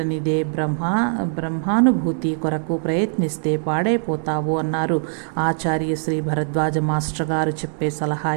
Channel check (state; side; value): silent; left; 64 dB below the other